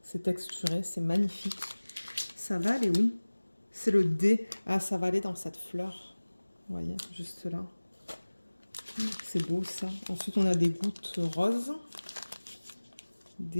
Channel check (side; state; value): both; inverted; correlation -1.00